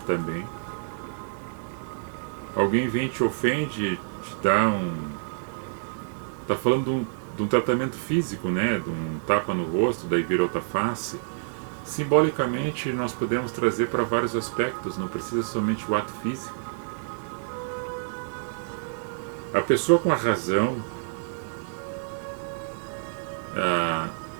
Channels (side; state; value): left; silent; digital silence